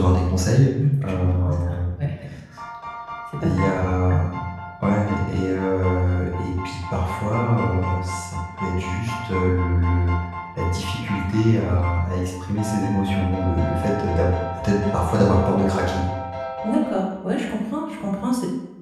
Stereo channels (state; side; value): identical; both; correlation 1.00